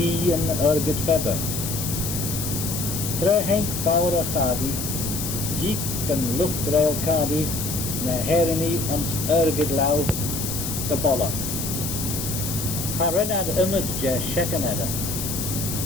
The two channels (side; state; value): left; noise; hiss, 4 dB below the sound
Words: and Ergid Feber. Tre Henk Faura Khadi, Jeek and Luftrail Khadi, na Herini and Ergid Lau, the Bolla. Harenad Imad Je Shekaneda.